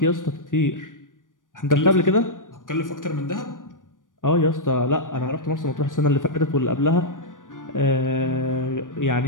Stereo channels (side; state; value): right; late; 0.88 ms